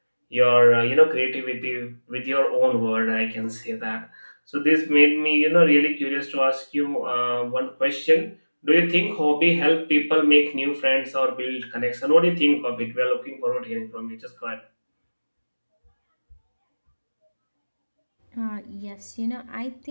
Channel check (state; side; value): inverted; both; correlation -1.00